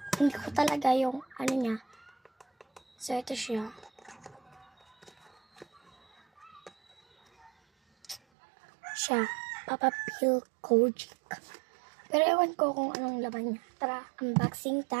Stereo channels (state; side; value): drops out; left; at 8.2 s